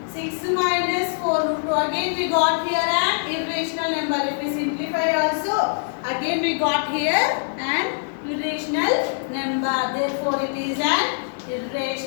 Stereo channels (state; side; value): silent; right; 63 dB below the other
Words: again we got here an irrational number. Therefore, it is an